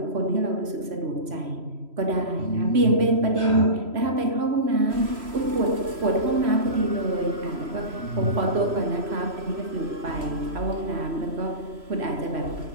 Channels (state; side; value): late; left; 3.1 ms